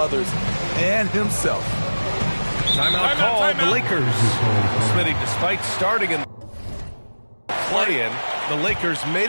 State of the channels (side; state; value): both; inverted; correlation -1.00